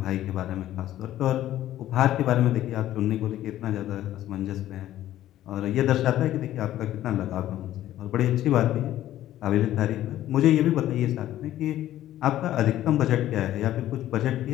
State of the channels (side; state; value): right; quieter; 13.3 dB